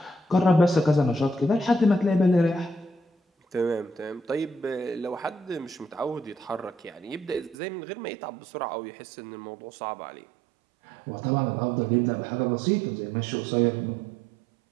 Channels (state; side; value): drops out; left; at 7.6 s